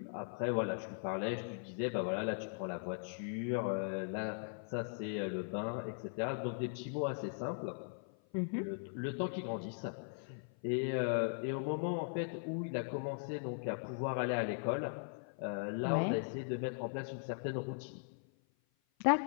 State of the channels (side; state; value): right; silent; 52 dB below the other